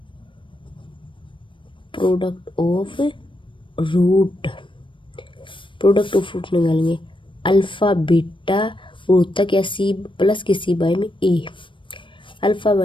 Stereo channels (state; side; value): late; right; 0.24 ms